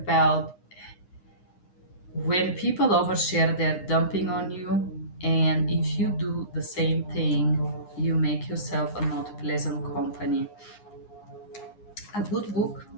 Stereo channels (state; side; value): late; right; 9.7 ms